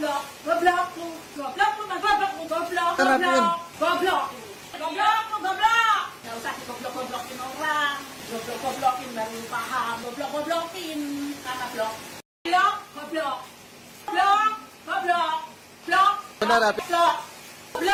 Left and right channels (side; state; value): both; identical; correlation 1.00